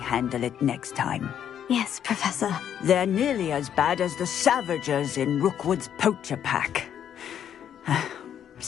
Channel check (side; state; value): right; quieter; 9.4 dB